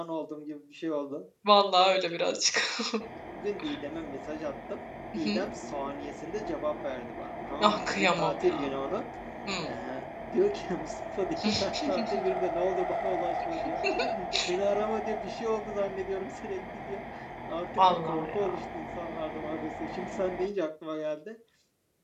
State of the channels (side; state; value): both; identical; correlation 1.00